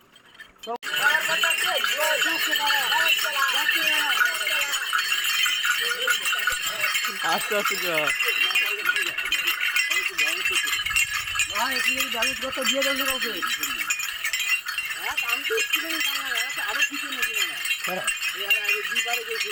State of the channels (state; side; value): identical; both; correlation 1.00